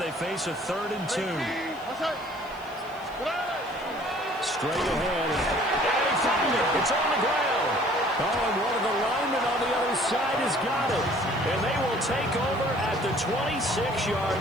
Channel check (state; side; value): noise; left; hiss, 26 dB below the sound